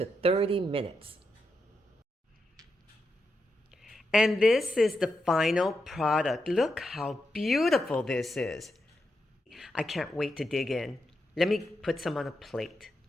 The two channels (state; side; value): normal; both; correlation 0.85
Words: 30 minutes. And this is the final product. Look how beautiful this is. I can't wait to dig in. Let me put some on a plate.